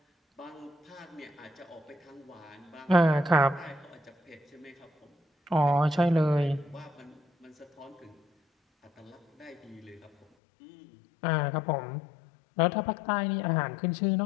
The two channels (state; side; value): drops out; right; at 10.2 s